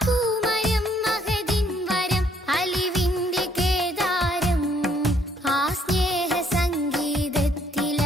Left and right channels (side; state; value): both; normal; correlation 0.67